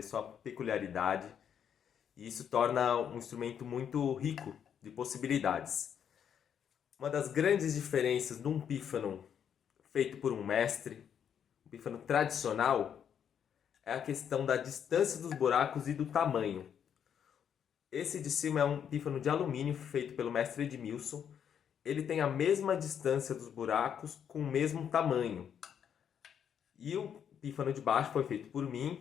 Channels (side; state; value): right; quieter; 8.4 dB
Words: sua peculiaridade, e isso torna um instrumento muito rico de possibilidades. Uma das grandes diferenças de um pífano feito por um mestre, um pífano tradicional, é a questão da distância dos buracos e do tamanho. Esse de cima é um pífano de alumínio feito pelo mestre Edmilson. Ele tem a mesma distância dos buracos com o mesmo tamanho. E o pífano de baixo foi feito por